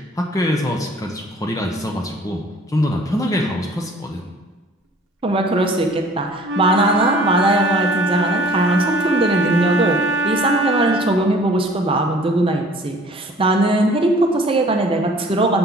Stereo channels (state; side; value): normal; both; correlation 0.51